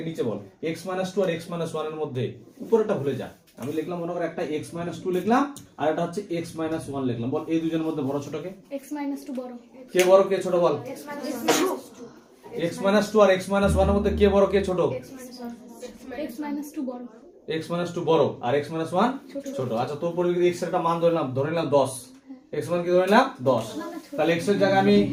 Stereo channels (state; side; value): identical; both; correlation 1.00